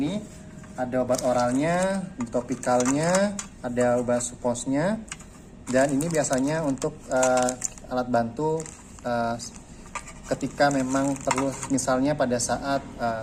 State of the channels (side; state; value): both; identical; correlation 1.00